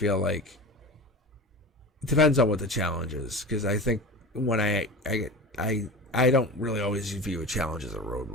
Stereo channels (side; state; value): both; normal; correlation 0.31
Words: like it depends on what the challenge is. Because I think when I don't really always view a challenge as a